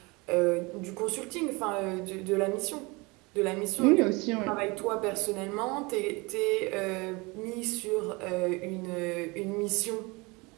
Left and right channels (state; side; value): quieter; left; 25.8 dB